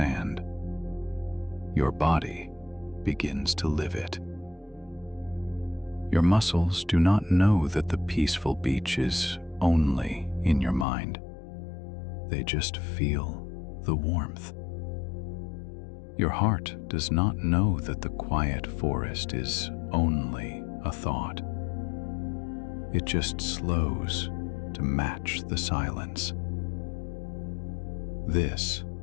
your body begins to live it. Your muscles do not know that the peaceful beach is only in your mind. They just feel the warmth. Your heart does not know that the quiet forest is only a thought. It just slows to match the silence. This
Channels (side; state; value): right; drops out; at 10.9 s